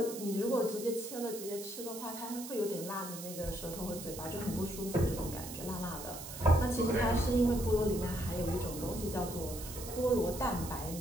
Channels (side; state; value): right; noise; hiss, 10 dB below the sound